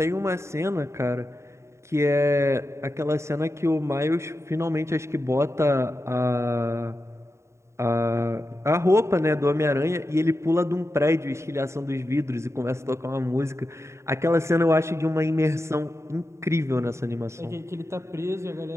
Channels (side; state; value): left; late; 0.14 ms